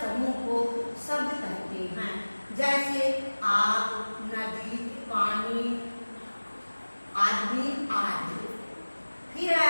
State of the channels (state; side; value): inverted; both; correlation -1.00